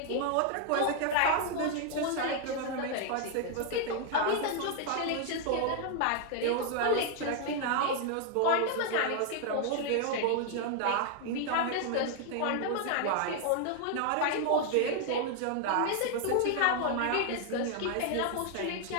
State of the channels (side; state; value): both; different; correlation 0.00